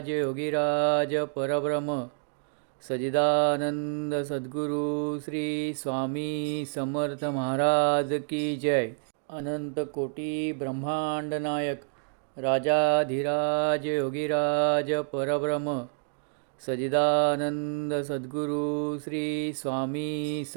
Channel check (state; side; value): silent; left; digital silence